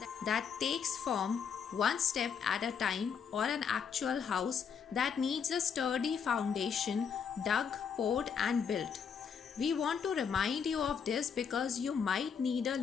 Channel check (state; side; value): quieter; right; 6.8 dB